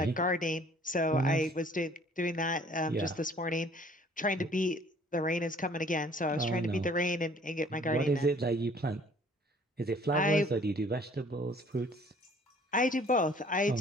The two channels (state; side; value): normal; both; correlation 0.56